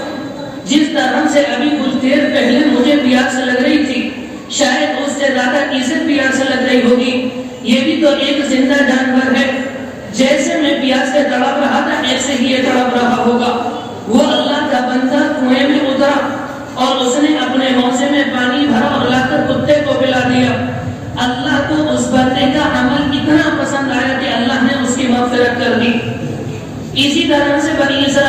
جس طرح سے ابھی کچھ دیر پہلے مجھے پیاس لگ رہی تھی، شاید اس سے زیادہ اسے پیاس لگ رہی ہوگی، یہ بھی تو ایک زندہ جانور ہے، جیسے میں پیاس سے تڑپ رہا تھا ایسے ہی یہ تڑپ رہا ہوگا۔ وہ اللہ کا بندہ کنویں میں اترا اور اس نے اپنے موزے میں پانی بھرا اور لا کر کتے کو پلا دیا۔ اللہ کو اس بندے کا عمل اتنا پسند آیا کہ اللہ نے اس کی مغفرت کر دی۔ اسی طرح سے بنی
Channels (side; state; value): both; identical; correlation 1.00